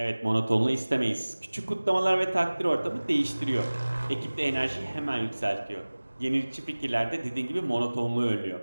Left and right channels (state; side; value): inverted; both; correlation -1.00